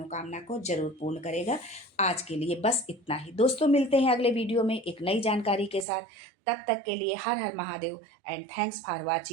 को जरूर पूर्ण करेगा। आज के लिए बस इतना ही दोस्तों, मिलते हैं अगले वीडियो में एक नई जानकारी के साथ। तब तक के लिए हर हर Mahadev and thanks for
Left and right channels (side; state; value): left; drops out; at 5.9 s